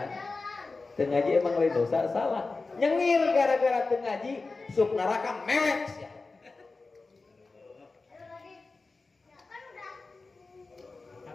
teu ngaji emang lain dosa salah nyengir gara-gara teu ngaji sup neraka mewek sia.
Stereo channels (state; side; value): quieter; right; 3.8 dB